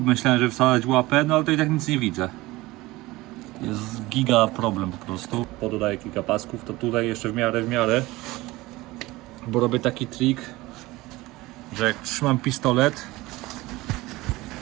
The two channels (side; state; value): left; quieter; 19.9 dB